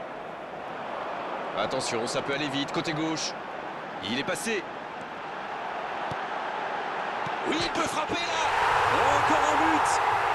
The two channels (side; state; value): both; identical; correlation 1.00